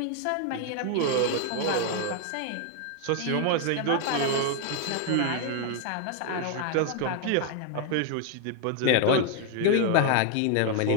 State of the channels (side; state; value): both; different; correlation 0.01